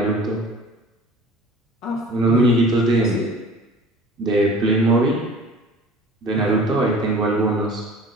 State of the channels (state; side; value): normal; both; correlation 0.45